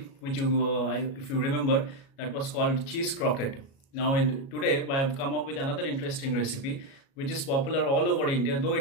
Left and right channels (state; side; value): late; right; 37 ms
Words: which if you remember, that was called cheese croquette. Now today I have come up with another interesting recipe which is popular all over India, though